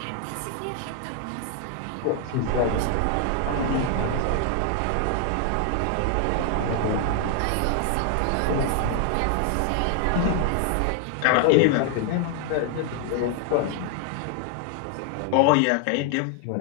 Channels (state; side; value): different; both; correlation 0.00